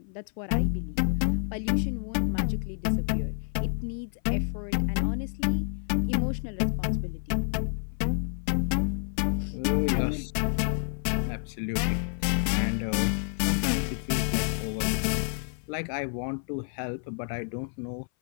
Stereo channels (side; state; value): right; silent; 57 dB below the other